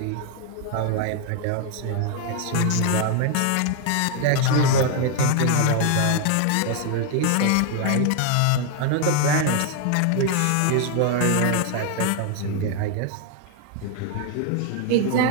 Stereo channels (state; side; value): different; both; correlation 0.00